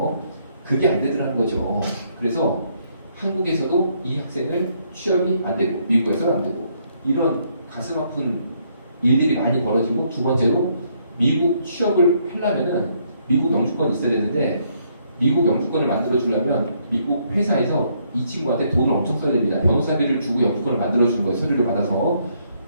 그게 안 되더라는 거죠. 그래서 한국에서도 이 학생을 취업이 안 되고 미국에서는 안 되고 이런 가슴 아픈 일들이 많이 벌어지고 두 번째로 미국 취업을 하려면은 미국 영주권이 있어야 되는데 미국 영주권을 만들어 주려면 미국 회사에서 이 친구한테 돈을 엄청 써야 됩니다. 변호사비를 주고 영주권을 만들어 주는 거예요. 서류를 받아서.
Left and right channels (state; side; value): inverted; both; correlation -0.71